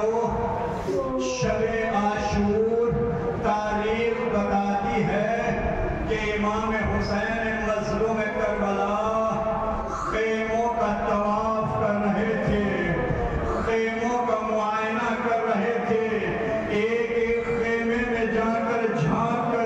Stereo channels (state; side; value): identical; both; correlation 1.00